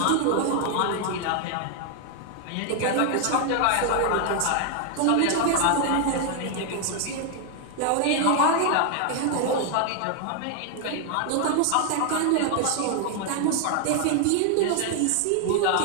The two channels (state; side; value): different; both; correlation 0.00